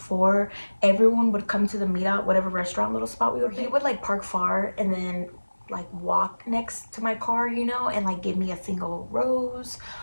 everyone would come to the meetup, whatever restaurant little spot we would. He would like park far and then like walk next to my car, you know, and like give me a single rose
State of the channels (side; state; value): both; inverted; correlation -1.00